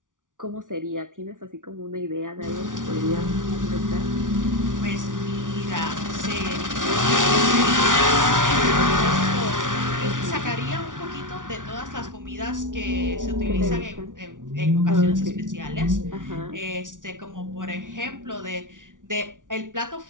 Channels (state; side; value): late; left; 0.88 ms